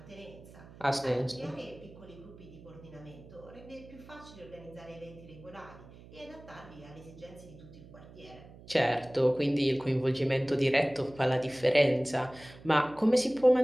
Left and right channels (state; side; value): noise; right; hum, 19 dB below the sound